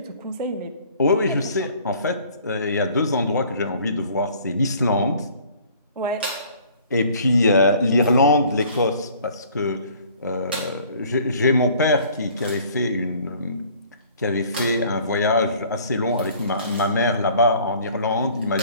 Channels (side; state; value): both; inverted; correlation -0.54